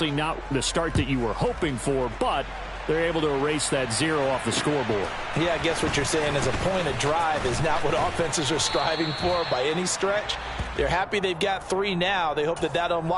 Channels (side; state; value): both; identical; correlation 1.00